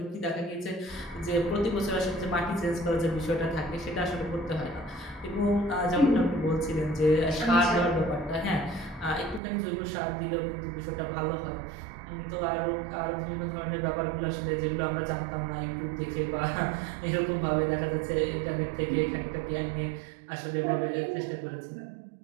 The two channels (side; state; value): left; drops out; at 9.4 s